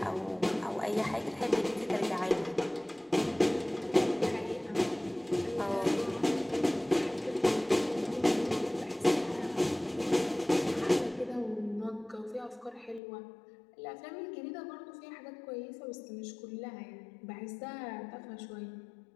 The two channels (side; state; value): right; drops out; at 13.0 s